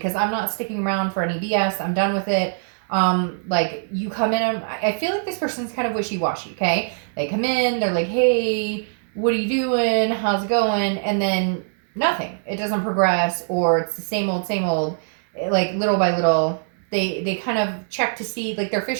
I'm not sticking around for any BS. I'm done with it. Like you come in, I feel like this person's kind of wishy-washy. Okay. They come in, they're like, hey, what are you doing? How's it going? And then nothing. It doesn't progress, or it's the same old, like little by little. They kind of check to see, like they're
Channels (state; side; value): silent; left; digital silence